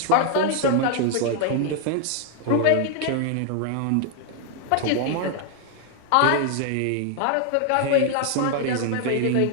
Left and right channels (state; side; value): different; both; correlation 0.00